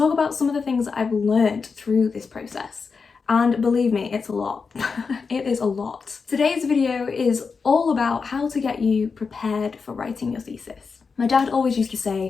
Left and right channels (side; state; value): right; quieter; 5.1 dB